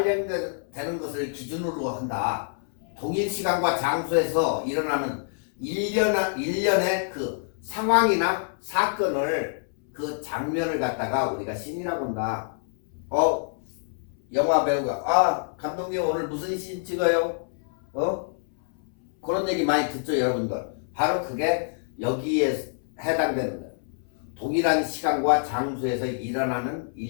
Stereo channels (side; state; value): right; silent; 61 dB below the other